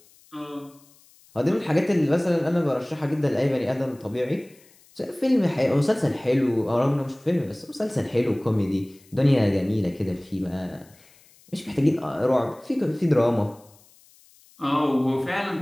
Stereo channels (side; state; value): left; noise; hiss, 28 dB below the sound